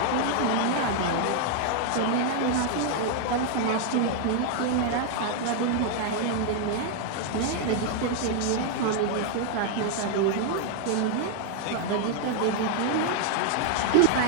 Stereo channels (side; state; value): both; different; correlation 0.00